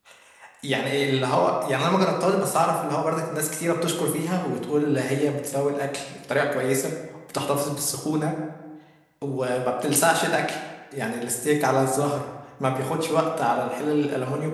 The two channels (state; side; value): identical; both; correlation 1.00